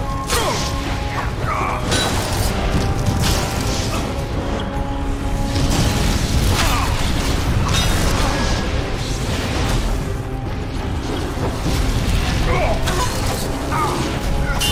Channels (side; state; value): both; identical; correlation 1.00